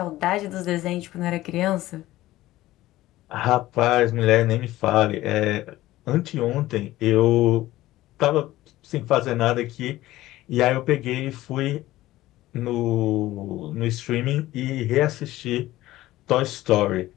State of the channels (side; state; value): right; quieter; 16.3 dB